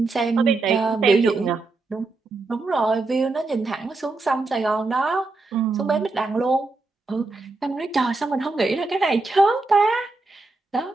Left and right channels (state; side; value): quieter; left; 3.5 dB